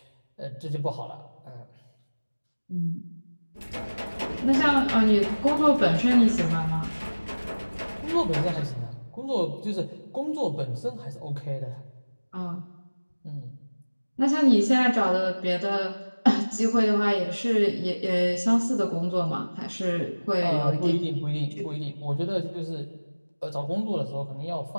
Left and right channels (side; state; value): both; inverted; correlation -1.00